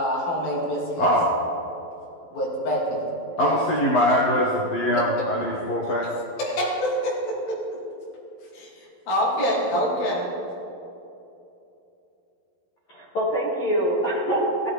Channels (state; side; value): late; right; 11 ms